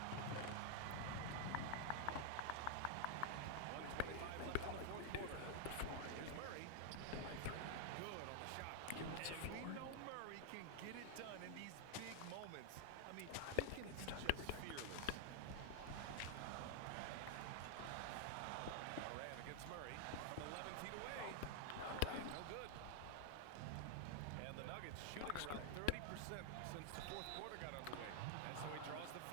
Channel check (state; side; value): different; both; correlation 0.00